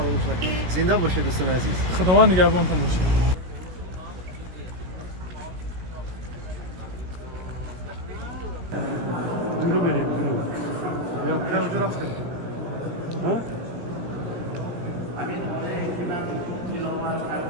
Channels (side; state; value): left; late; 17 ms